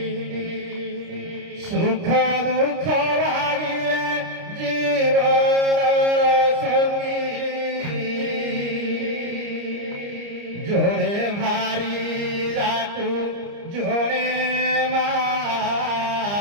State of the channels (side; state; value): left; late; 29 ms